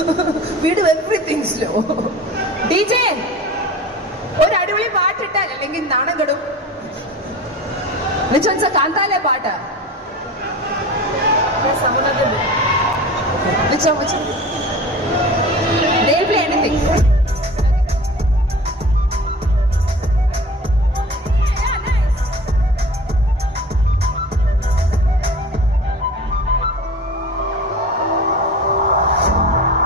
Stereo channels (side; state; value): both; normal; correlation 0.37